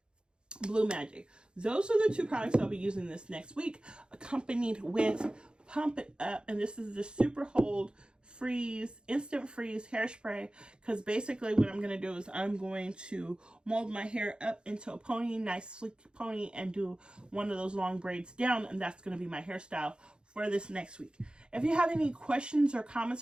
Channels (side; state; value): left; late; 0.051 ms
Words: Blue Magic. Those are the two products I'll be using this next week, accompanied with Pump It Up, and this is the Super Hold Instant Freeze hairspray, because basically what I'm going to do is I'm going to mold my hair up into a pony, nice sleek pony, and do one of those long braids down, and that's going to be my hairstyle for this next week. If you have any questions or